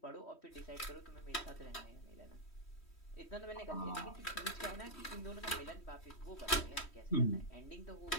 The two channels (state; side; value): late; right; 3.1 ms